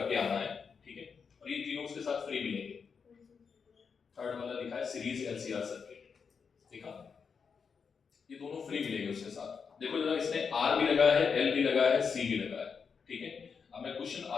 आना है, ठीक है? और ये तीनों उसके साथ फ्री मिलेंगे। थर्ड वाला लिखा है सीरीज एलसीआर सर्किट, देखा? ये दोनों फ्री मिलेंगे उसके साथ। देखो जरा, इसमें आर भी लगा है, एल भी लगा है, सी भी लगा है, ठीक है? अब मैं क्वेश्चन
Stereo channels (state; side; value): quieter; right; 5.9 dB